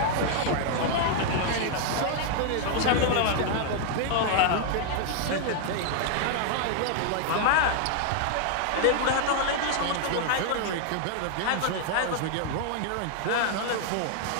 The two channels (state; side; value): different; both; correlation 0.00